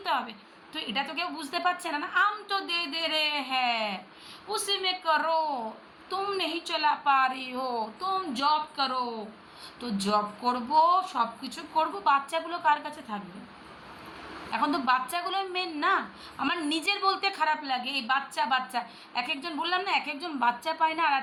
হবে। তো এটা তো কেউ বুঝতে পারছে না। না, আম তো দে দে রে হ্যাঁ উসি মে করো, তুম নেই চলা পা রি হো, তুম জব করো। তো জব করবো, সব কিছু করবো, বাচ্চাগুলো কার কাছে থাকবে? এখন তো বাচ্চাগুলো মেন না। আমার নিজের বলতে খারাপ লাগে, এই বাচ্চা বাচ্চা এক একজন, বললাম না এক একজন বাচ্চা পায় না। আর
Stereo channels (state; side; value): identical; both; correlation 1.00